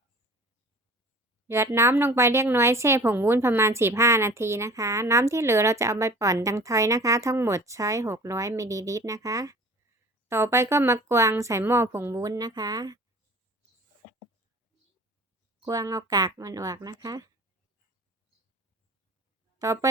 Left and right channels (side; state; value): both; normal; correlation 0.43